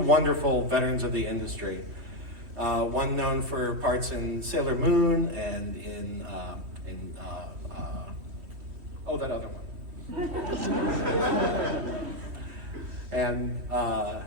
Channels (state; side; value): late; left; 3.1 ms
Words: veterans of the industry. One known for parts in Sailor Moon and in that other one. And